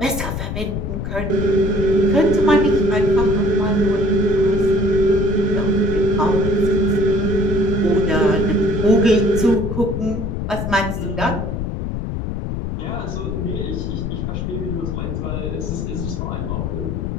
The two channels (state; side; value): noise; left; rumble, 3 dB below the sound